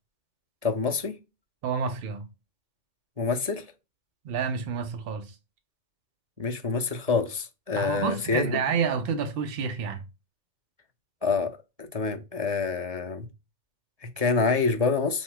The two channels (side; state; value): left; late; 1.7 ms